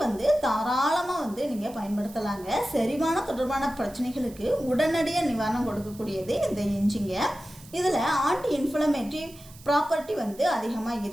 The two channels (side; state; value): right; noise; hiss, 21 dB below the sound